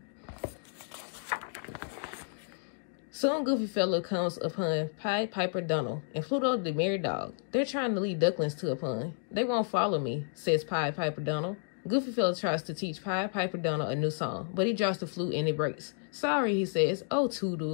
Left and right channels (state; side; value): silent; right; digital silence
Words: Soon Goofy fella comes upon Pied Piper Donald and Pluto the merry dog. They're trying to lead ducklings to a pond. They won't follow me, says Pied Piper Donald. Goofy fella tries to teach Pied Piper Donald a new song, but he drops the flute and it breaks. Sorry, he says. Oh,